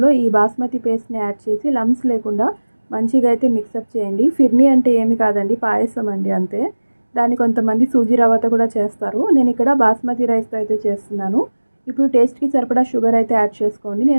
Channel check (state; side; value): inverted; both; correlation -1.00